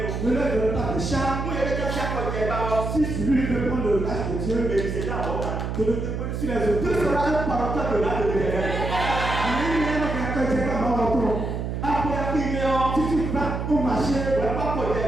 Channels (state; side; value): noise; right; hum, 3 dB below the sound